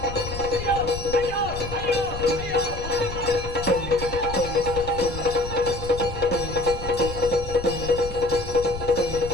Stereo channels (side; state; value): left; noise; rumble, 9 dB below the sound